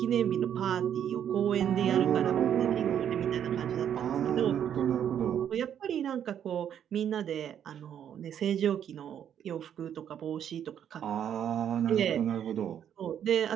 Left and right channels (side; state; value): left; quieter; 9.4 dB